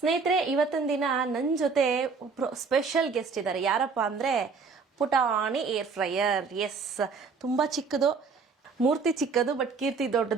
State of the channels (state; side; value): quieter; left; 5.0 dB